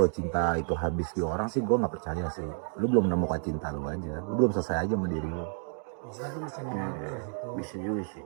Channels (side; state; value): left; silent; 58 dB below the other